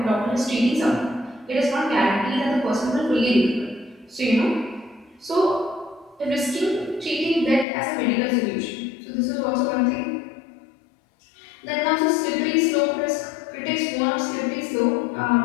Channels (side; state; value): right; drops out; at 7.7 s